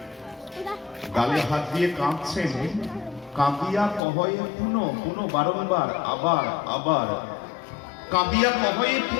গালে হাত দিয়ে কাঁদছেন, কাঁদিয়া কহয়ে পুনঃ, পুনঃ বারংবার, আবার আবার কাঁদিয়া কহয়ে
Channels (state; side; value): drops out; right; at 4.0 s